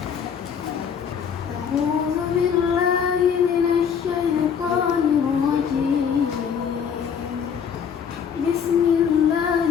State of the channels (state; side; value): quieter; right; 7.3 dB